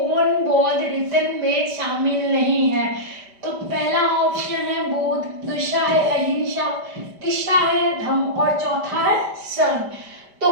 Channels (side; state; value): left; late; 5.1 ms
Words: बौद्ध रीतन में शामिल नहीं है। तो पहला ऑप्शन है बुद्ध, दूसरा है अहिंसा, तीसरा है धम्म और चौथा है संघ। तो